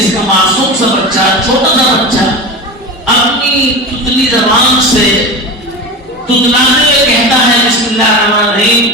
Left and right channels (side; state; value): both; normal; correlation 0.27